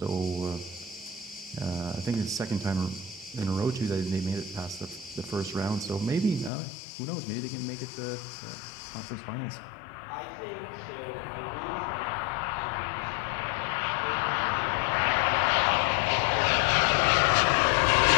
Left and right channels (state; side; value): drops out; right; at 6.5 s